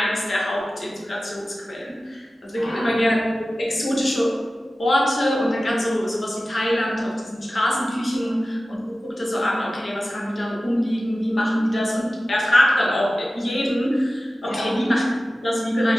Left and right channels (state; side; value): normal; both; correlation 0.95